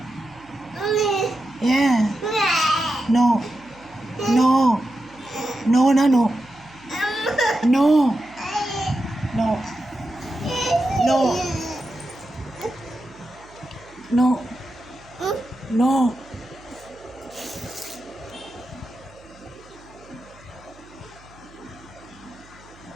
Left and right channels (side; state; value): right; noise; hum, 25 dB below the sound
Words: ஏன்? நோ நோ நோனா no no no no no no.